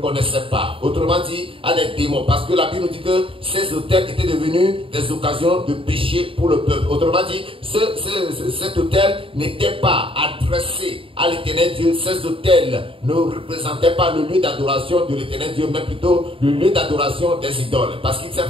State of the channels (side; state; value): left; late; 0.26 ms